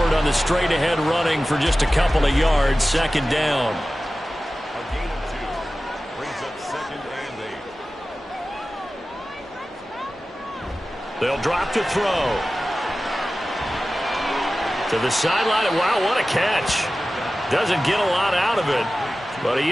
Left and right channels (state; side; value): normal; both; correlation 0.95